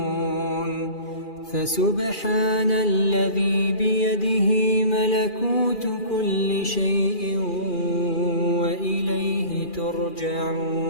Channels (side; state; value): right; late; 2.4 ms